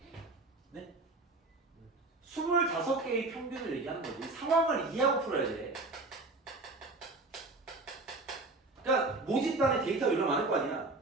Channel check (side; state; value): left; quieter; 3.2 dB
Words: 25개의 평균을 얘기하는 거지. 상황을 이해하고 풀어야 돼. 그러니까 모집단에 데이터가 얼마나 많을 거 아니야.